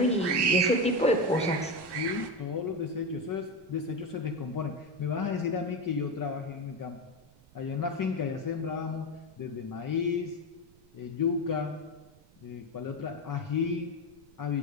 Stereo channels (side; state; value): right; noise; rumble, 27 dB below the sound